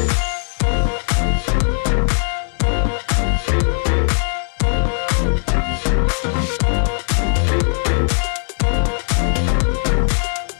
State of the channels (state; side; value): silent; right; 67 dB below the other